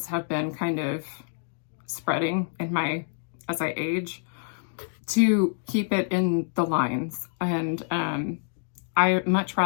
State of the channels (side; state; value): right; silent; 60 dB below the other